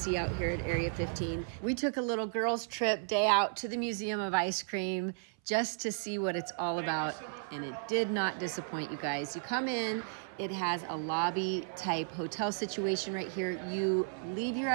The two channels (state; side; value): silent; left; 55 dB below the other